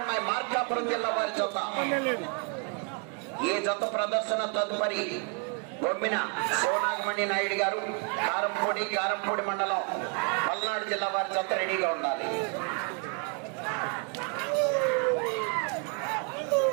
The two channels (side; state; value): left; quieter; 36.4 dB